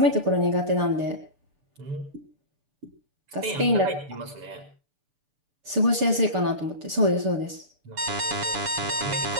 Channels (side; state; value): left; late; 6.9 ms